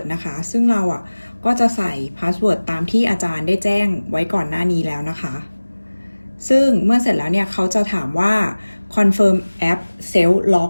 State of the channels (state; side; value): inverted; both; correlation -1.00